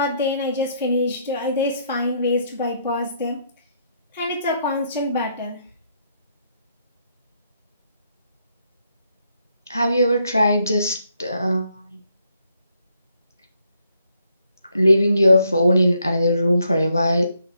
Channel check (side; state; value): both; inverted; correlation -0.74